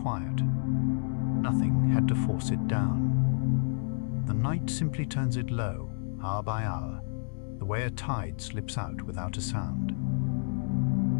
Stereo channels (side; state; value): right; silent; digital silence